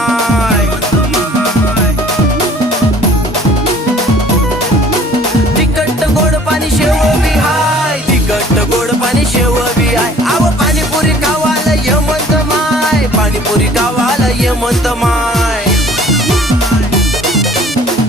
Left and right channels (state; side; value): normal; both; correlation 0.52